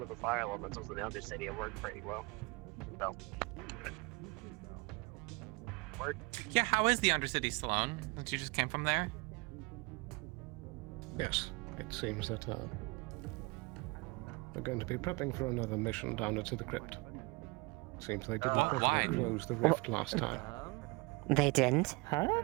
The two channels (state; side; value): quieter; left; 26.8 dB